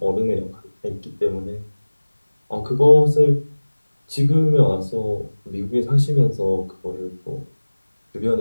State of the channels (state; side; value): inverted; both; correlation -1.00